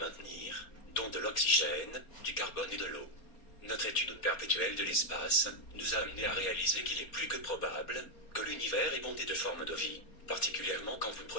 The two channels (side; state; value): right; late; 4.3 ms